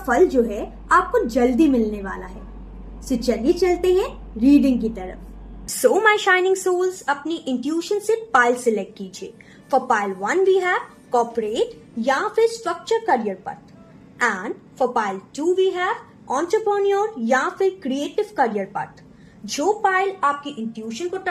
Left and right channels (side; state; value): both; identical; correlation 1.00